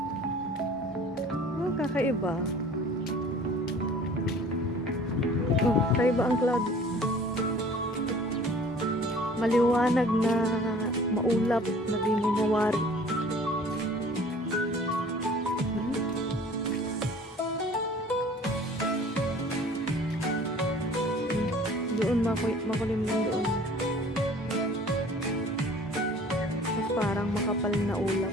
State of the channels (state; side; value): normal; both; correlation 0.49